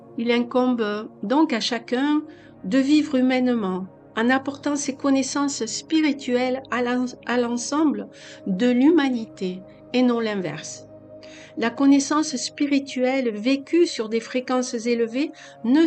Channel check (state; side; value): identical; both; correlation 1.00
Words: Il incombe donc à chacun de vivre humainement en apportant ses connaissances spirituelles à l'ensemble de l'humanité et non l'inverse. La connaissance spirituelle vécue sur des fréquences élevées ne